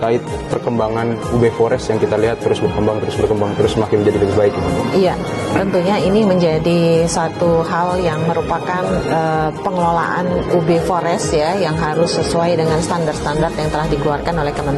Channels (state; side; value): identical; both; correlation 1.00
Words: perkembangan UB Forest yang kita lihat terus berkembang, terus makin menjadi lebih baik? Iya, tentunya ini menjadi satu hal yang merupakan pengelolaan UB Forest ya, yang harus sesuai dengan standar-standar yang telah dikeluarkan oleh